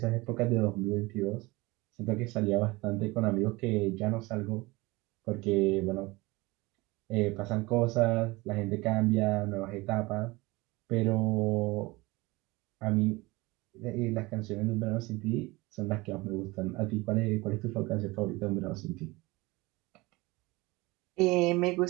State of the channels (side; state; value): left; quieter; 22.4 dB